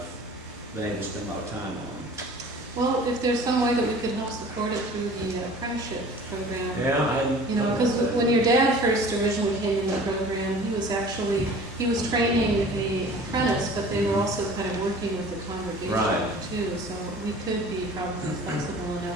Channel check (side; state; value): both; normal; correlation 0.45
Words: been able to spend a lot of time on. Well, if there's some way that we could help support it through the apprenticeship program. Yeah, because when your dad first originally came in the program, he was training an apprentice, but they were also kind of working with the congregation too. So we could be probably flexible